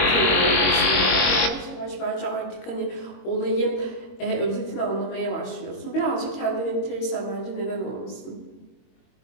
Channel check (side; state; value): right; late; 22 ms